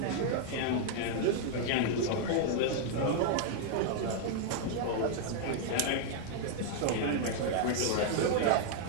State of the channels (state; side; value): different; both; correlation -0.01